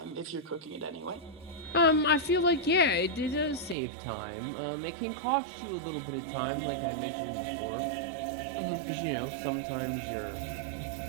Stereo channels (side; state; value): left; drops out; at 3.8 s